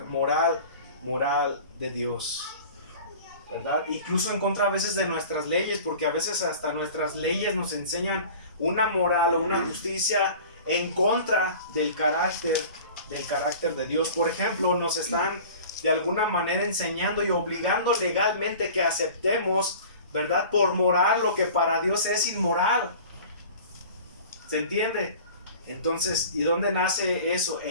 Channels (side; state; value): both; inverted; correlation -0.42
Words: moral de Dios, ¿verdad? Incluso en contra a veces de nuestras leyes, porque a veces hasta nuestras leyes nos enseñan una moral o una justicia en contra del carácter de Dios. Por ejemplo, nos están de alguna manera enseñando y obligando legalmente que aceptemos, ¿verdad?, por moral lo que para Dios es inmoral. ¿Se entiende? Entonces, ¿y dónde nace eso?